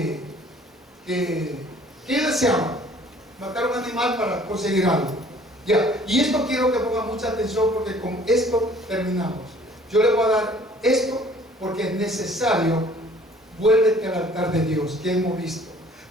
deseaban, matar un animal para conseguir algo. Ya, y esto quiero que pongan mucha atención, porque con esto terminamos. Yo le voy a dar esto porque es necesario. Vuélvete al altar de Dios, que hemos visto.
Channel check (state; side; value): normal; both; correlation 0.55